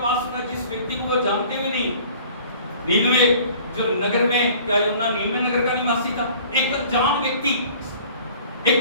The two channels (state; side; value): inverted; both; correlation -0.49